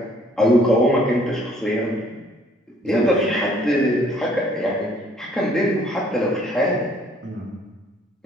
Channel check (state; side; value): normal; both; correlation 0.61